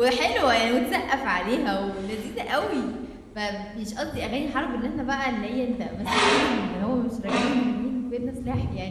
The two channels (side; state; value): both; identical; correlation 1.00